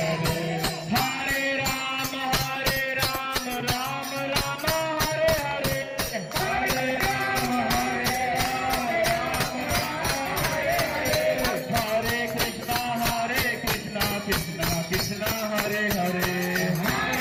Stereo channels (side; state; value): both; identical; correlation 1.00